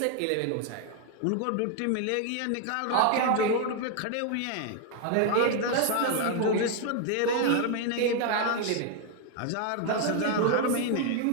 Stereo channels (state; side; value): different; both; correlation 0.00